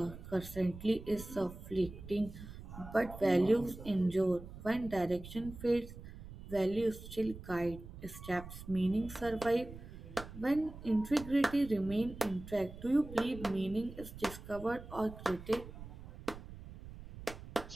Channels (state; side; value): noise; right; rumble, 14 dB below the sound